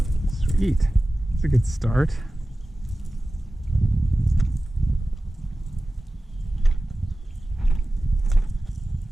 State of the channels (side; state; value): both; normal; correlation 0.96